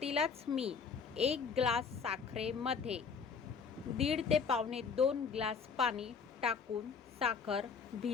मी 1 ग्लास साखरेमध्ये 1.5 ते पावणे 2 ग्लास पाणी टाकून साखर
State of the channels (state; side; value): quieter; right; 5.7 dB